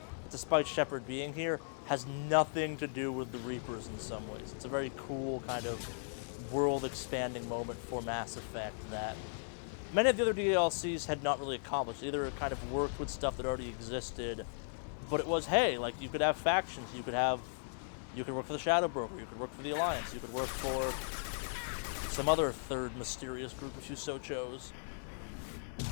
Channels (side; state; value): right; silent; 53 dB below the other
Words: despite Shepard being here, has nothing to do with the Reapers in some ways. It's a very cool kind of world-expanding moment for Mass Effect that many of the other DLCs had not really accomplished. Either kind of worked with stuff that already existed, but it was, hey, like, you could have factions, you could work for the Shadow Broker, you could work for the Alliance, you could work for some other third mysterious group if you so chose.